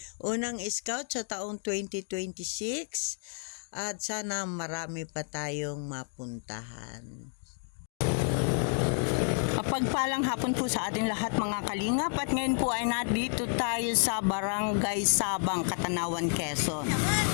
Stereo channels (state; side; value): silent; right; 57 dB below the other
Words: unang scout sa taong 2026 at sana marami pa tayong mapuntahan. Pagpalang hapon po sa ating lahat mga kalingap, at ngayon po ay nandito tayo sa Barangay Sabang, Katanawan, Quezon.